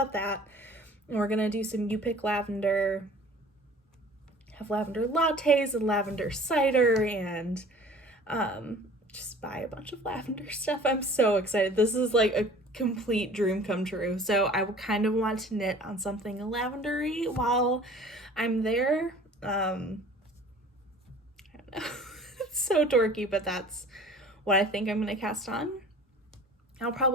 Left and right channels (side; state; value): both; normal; correlation 0.47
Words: that. And we're going to do some You Pick Lavender, have lavender lattes and lavender cider, and just buy a bunch of lavender stuff. I'm so excited. This is like a complete dream come true. So I kind of want to knit on something lavendery while I'm there. I don't know. It's so dorky, but that's what I think I'm going to cast on. I'll